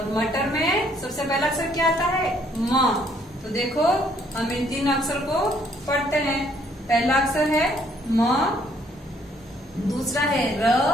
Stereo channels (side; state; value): both; normal; correlation 0.66